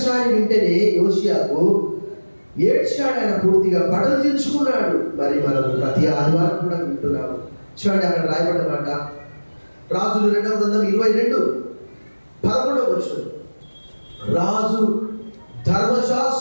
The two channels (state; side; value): inverted; both; correlation -1.00